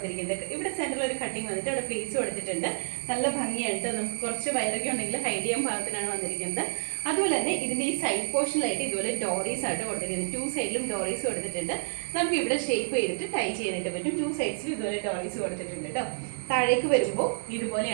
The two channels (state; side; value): silent; left; 59 dB below the other